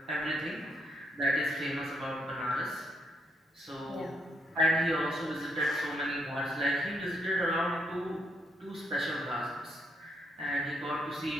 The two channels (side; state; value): both; normal; correlation 0.75